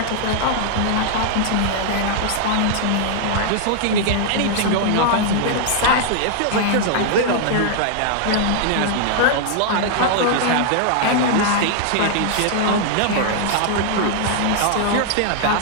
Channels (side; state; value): both; different; correlation 0.00